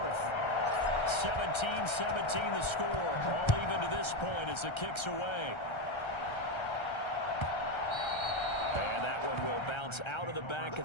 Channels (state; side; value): late; right; 1.3 ms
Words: 17-17 the score. All even to this point as the kick's away. And that one will bounce out of the back of